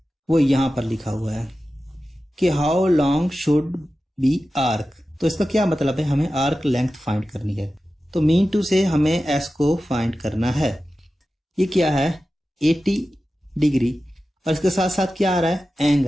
वो यहां पर लिखा हुआ है कि how long should be arc. तो इसका क्या मतलब है, हमें आर्क लेंथ फाइंड करनी है। तो मीन टू से हमें एस को फाइंड करना है। ये क्या है 80 डिग्री, और इसके साथ साथ क्या आ रहा है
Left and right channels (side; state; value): both; normal; correlation 0.94